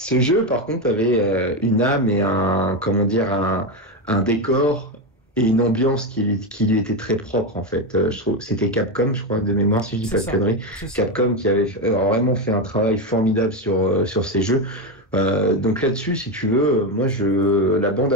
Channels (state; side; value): normal; both; correlation 0.12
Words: jeu par contre avait une âme et un décor et une ambiance qui lui était très propre en fait. Je trouve c'était Capcom, je crois, de mémoire, si je dis pas de conneries. Capcom qui avait vraiment fait un travail formidable sur ces jeux. Donc là-dessus, si tu veux, moi la